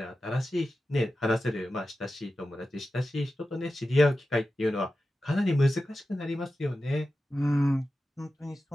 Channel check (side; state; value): both; normal; correlation 0.92